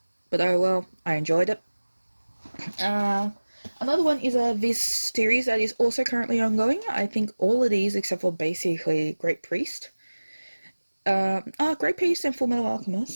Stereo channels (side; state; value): both; inverted; correlation -1.00